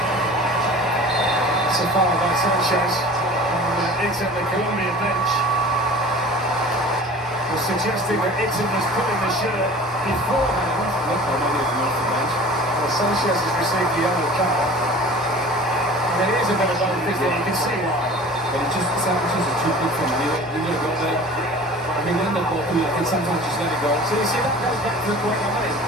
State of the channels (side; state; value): both; normal; correlation 0.42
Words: It's a foul by Sanchez. It's at the Colombia bench. Was suggesting that Ixon was putting the shirt beforehand. Look, I don't even know the bench. Well, Sanchez has received the yellow card. I mean, it is a bit of both, isn't it? You can see why. But Sanchez is too good for him. You let go there. I mean, when the ball comes, I think sometimes just let it go. So you see, that goes back to the point I made.